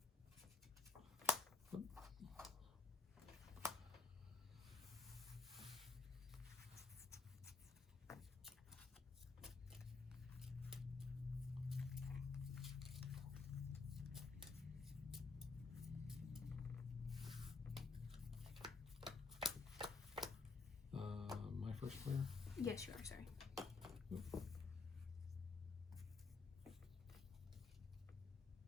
My first player. Yes, you are. Sorry.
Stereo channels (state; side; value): quieter; right; 4.0 dB